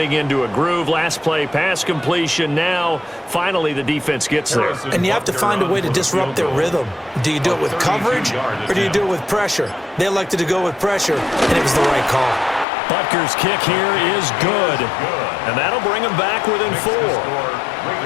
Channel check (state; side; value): drops out; right; at 12.7 s